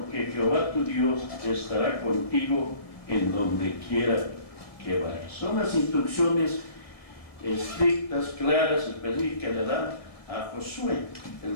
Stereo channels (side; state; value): right; late; 1.7 ms